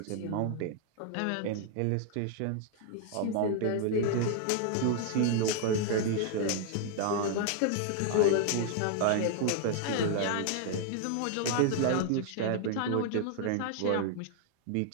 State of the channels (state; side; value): different; both; correlation 0.00